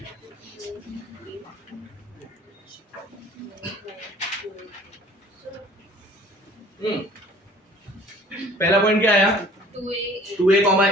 पहला पॉइंट क्या आया 2a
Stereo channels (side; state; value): both; normal; correlation 0.50